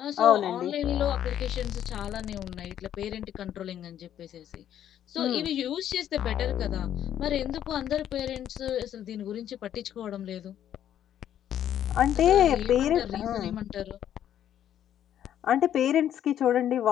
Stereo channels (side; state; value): right; quieter; 10.5 dB